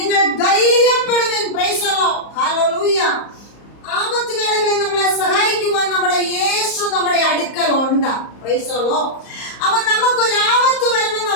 ധൈര്യപ്പെടുവിൻ. Praise the lord. ഹല്ലേലൂയ. ആപത്ത് വേളകളിൽ നമ്മളെ സഹായിക്കുവാൻ നമ്മുടെ യേശു നമ്മുടെ അടുക്കൽ ഉണ്ട്. Praise the lord. അവൻ നമുക്കൊരു ആപത്ത് വരുമ്പോൾ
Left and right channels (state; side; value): late; right; 34 ms